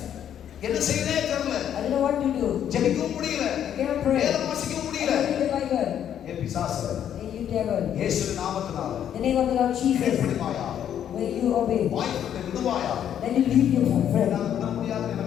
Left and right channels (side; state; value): right; quieter; 9.8 dB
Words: என்ன செய்யவே தெரியல. I don't know what to do. ஜெபிக்கவும் முடியல. I cannot pray. வேதம் வாசிக்கவும் முடியல. I can't read the Bible. ஏ பிசாசு, Hey, you devil. இயேசுவின் நாமத்தினால The name of the Lord Jesus. கீழ்ப்படிவாயாக, When you obey, வாய்ப்பை விடுவாயாக. then you leave your friend. என்னால விட முடியாதுன்னு